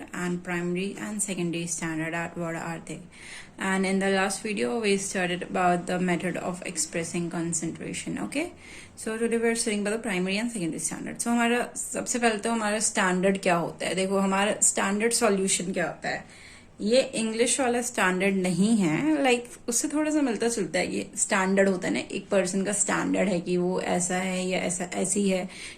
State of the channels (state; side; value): identical; both; correlation 1.00